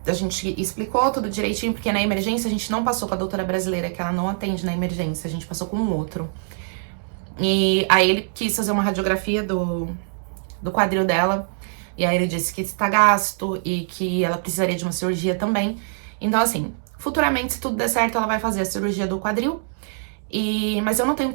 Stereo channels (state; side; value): silent; left; digital silence